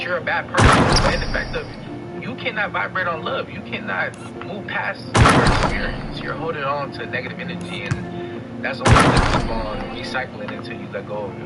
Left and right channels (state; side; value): identical; both; correlation 1.00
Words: you're a bad person, but in the fact of you cannot vibrate on love. You cannot move past your experience. You're holding on to negative energy, and that's only going to keep on recycling until you let go of